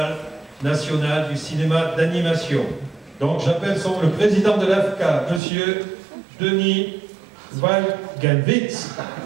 national du cinéma d'animation. Donc j'appelle le président de l'AFCA, monsieur Denis Valgalvitz.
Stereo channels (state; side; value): drops out; left; at 5.4 s